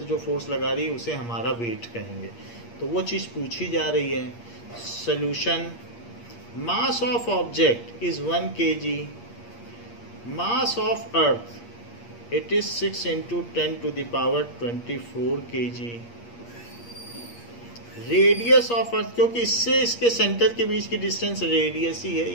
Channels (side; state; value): right; late; 8.5 ms